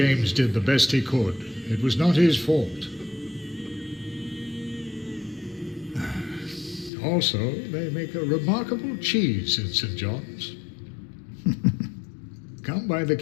did the best he could. It was not his fault. Also, they make a remarkable cheese in St. John's. Come by the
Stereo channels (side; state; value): right; drops out; at 6.9 s